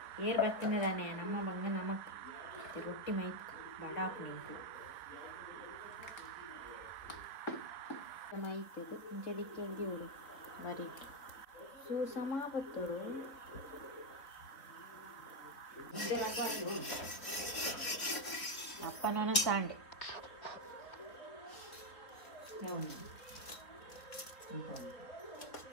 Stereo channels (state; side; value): late; right; 3.5 ms